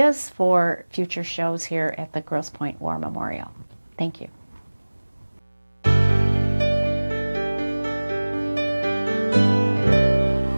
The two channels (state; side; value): inverted; both; correlation -1.00